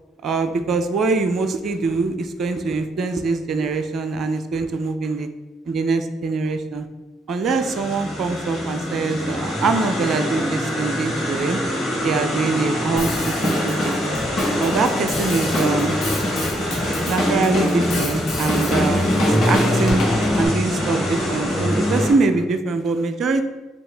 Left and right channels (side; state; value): both; normal; correlation 0.73